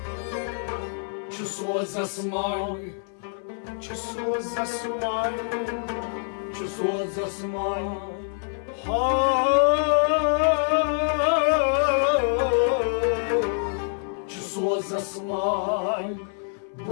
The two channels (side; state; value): right; silent; 61 dB below the other